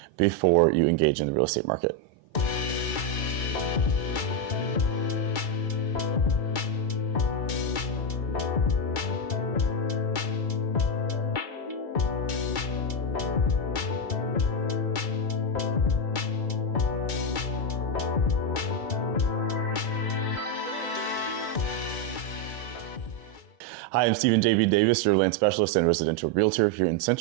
before you engage in the real estate market. Hi, I'm Stephen J.B. Davis, your land specialist and residential realtor here in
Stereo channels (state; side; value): late; right; 2.3 ms